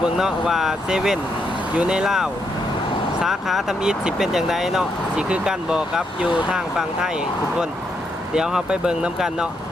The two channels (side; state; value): both; normal; correlation 0.79